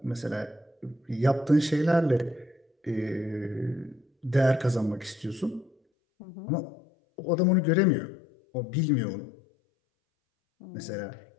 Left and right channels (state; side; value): drops out; right; at 5.8 s